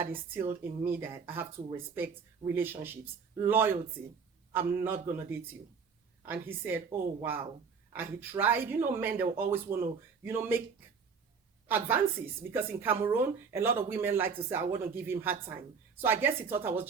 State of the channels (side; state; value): left; quieter; 5.8 dB